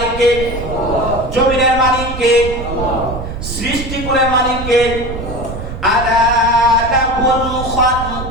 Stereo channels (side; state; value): right; noise; rumble, 8 dB below the sound